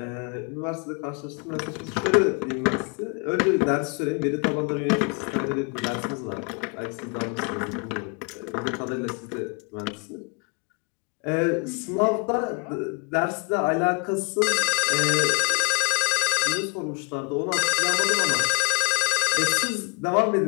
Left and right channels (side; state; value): right; quieter; 34.8 dB